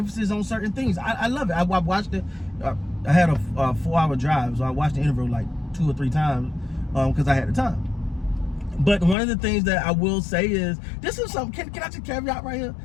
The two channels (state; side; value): drops out; right; at 9.2 s